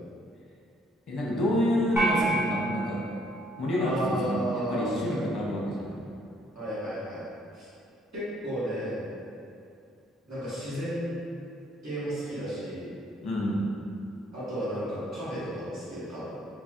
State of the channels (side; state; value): both; normal; correlation 0.66